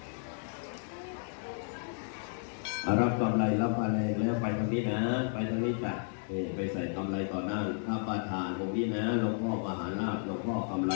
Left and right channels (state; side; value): silent; right; 56 dB below the other